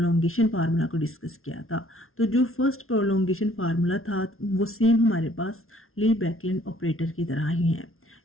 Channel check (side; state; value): right; late; 0.62 ms